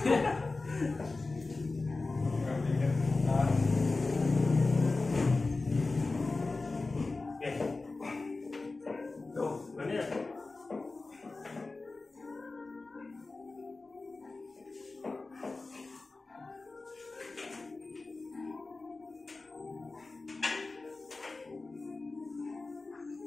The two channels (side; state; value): right; quieter; 3.5 dB